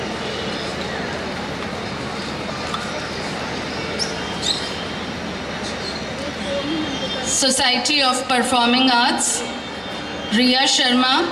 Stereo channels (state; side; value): identical; both; correlation 1.00